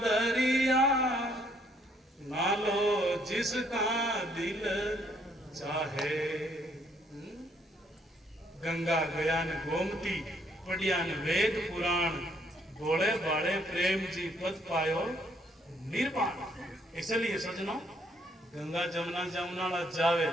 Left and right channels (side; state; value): both; normal; correlation 0.68